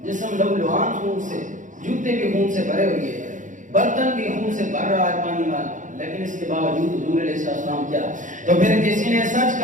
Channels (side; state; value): left; late; 0.37 ms